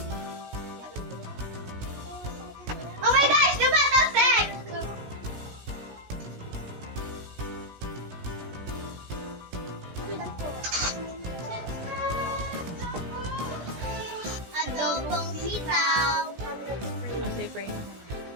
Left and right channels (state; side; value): late; left; 17 ms